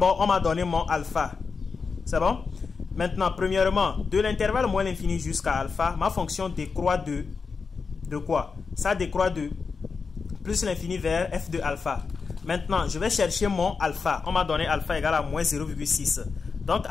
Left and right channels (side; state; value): right; quieter; 5.0 dB